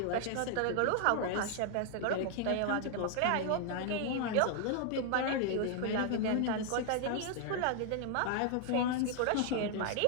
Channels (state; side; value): different; both; correlation 0.00